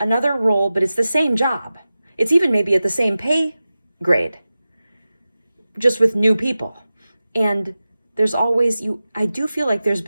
role, but it's the same job. It's even maybe at the same pay grade, just with new people. And there's always, I do feel like there's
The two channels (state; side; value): inverted; both; correlation -0.95